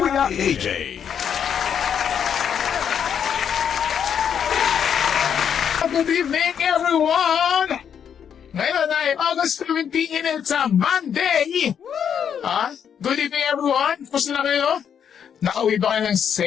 AJ. Good evening, everyone! Ngayon ay August 17, it's a Monday! Good evening, everyone! Kumusta na kayo? Nakauwi ba kayo ng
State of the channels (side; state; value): right; quieter; 8.2 dB